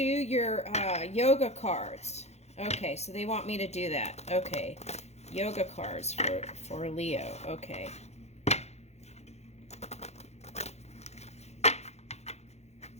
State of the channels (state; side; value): late; right; 0.31 ms